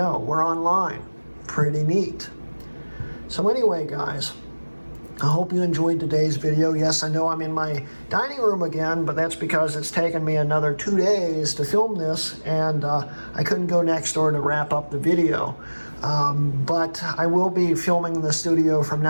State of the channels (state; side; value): inverted; both; correlation -1.00